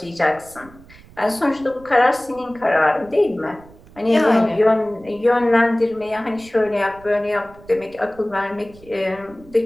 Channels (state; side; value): noise; right; rumble, 23 dB below the sound